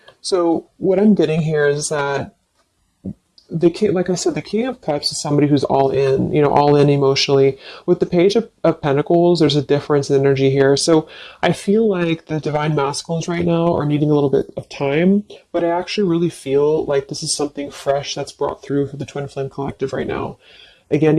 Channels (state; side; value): identical; both; correlation 1.00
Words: So what I'm getting here is that like I said, the King of Cups is somebody who's all in, all in emotionally. With the Page of Pentacles, there's a difference in energy here. So I feel like the Divine Masculines right now are needing a little bit of time, but I actually really feel like this is something fresh that's brought through for the Twin Flame Collective right now. Again,